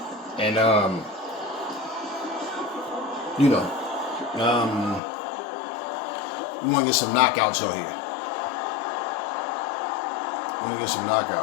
And, you know, we want to get some knockouts on here.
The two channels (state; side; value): drops out; right; at 5.0 s